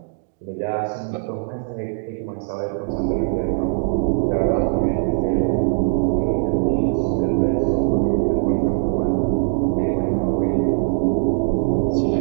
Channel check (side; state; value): left; silent; digital silence